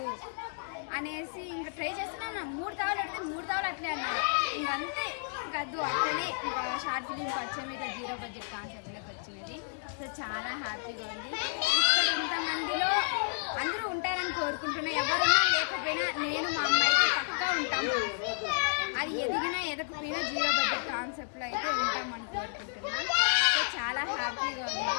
అనేసి ఇంకా ట్రై చేస్తున్నాను. 3 తావులు అడిగితే 3 తావులు అట్లే అన్నారు. ఇంకంతే ఇంకద్దు అట్లనే ఇంకా షార్ట్ ఫిలిం పరిచయం ఇట్లా 0 బడ్జెట్ కాన్సెప్ట్లోకి వచ్చినది. సో చాలా హ్యాపీగా ఉంది. ఇక్కడ ఇంతమందిలో అందరూ ఉంటారని కోరుకుంటున్నా. ఎవరున్నా లేకపోయినా నేను మా అమ్మాయికి పక్కా ఉంటాము. అది ఎదిగినా ఎదకపోయినా 0 బడ్జెట్ కాన్సెప్ట్లో అయితే ఉంటామని కోరుకుంటున్నా. సో చాలా హ్యాపీగా ఉంది.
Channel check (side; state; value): right; silent; digital silence